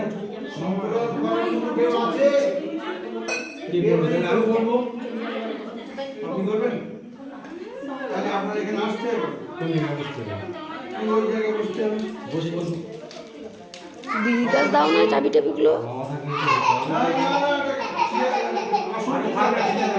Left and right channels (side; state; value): both; identical; correlation 1.00